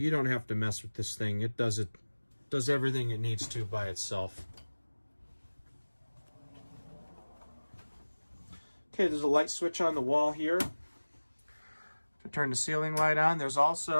don't have to mess with this thing. It does everything it needs to by itself. Okay, there's a light switch on the wall here to turn the ceiling light on. There's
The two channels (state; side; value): inverted; both; correlation -1.00